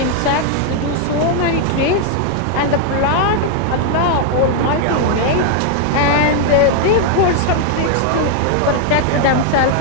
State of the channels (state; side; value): different; both; correlation 0.00